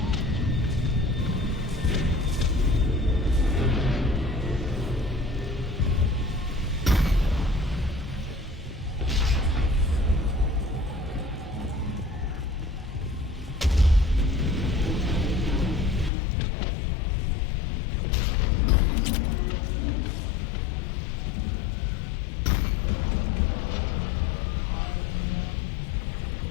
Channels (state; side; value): drops out; right; at 16.1 s